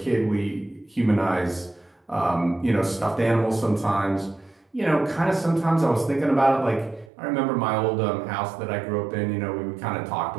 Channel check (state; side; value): drops out; left; at 7.1 s